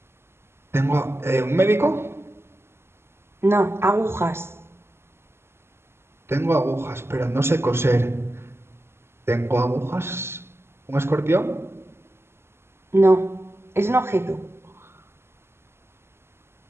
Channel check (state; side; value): late; left; 0.12 ms